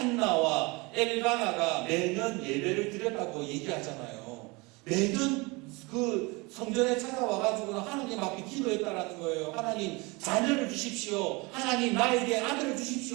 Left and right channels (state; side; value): quieter; left; 26.1 dB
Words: 엘가나가 매년 예배를 드렸다고 얘기하잖아요. 매년 그 성전에 찾아와가지고 하나님 앞에 기도했다라는 거예요. 하나님 자녀를 주십시오. 하나님 나에게 아들을